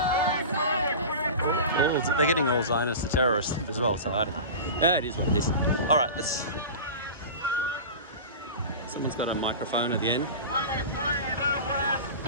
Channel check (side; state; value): both; inverted; correlation -0.31